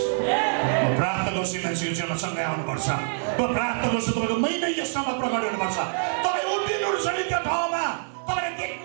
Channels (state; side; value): silent; left; 57 dB below the other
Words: म प्रार्थना गर्छु यो मान्छेको जीवनमा सँगै आउनुपर्छ, म प्रार्थना गर्छु तपाईँको महिना यसमा प्रकट हुनुपर्छ। तपाईँ उभिनुहुन्छ नि त्यो ठाउँमा, तपाईँले